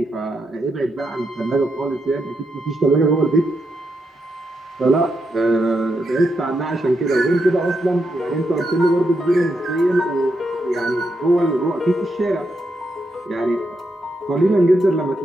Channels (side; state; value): both; normal; correlation 0.82